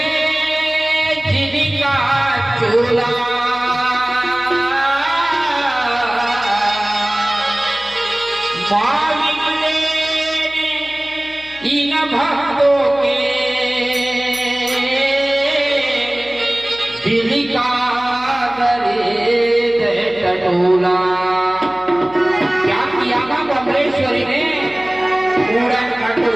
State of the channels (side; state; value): left; noise; hum, 25 dB below the sound